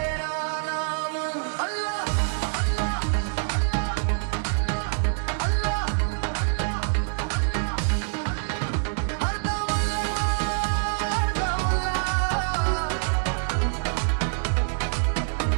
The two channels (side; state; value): left; silent; digital silence